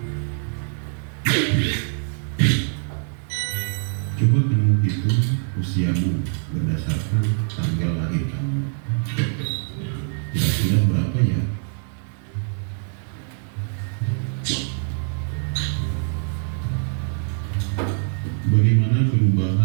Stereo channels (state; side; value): silent; left; 61 dB below the other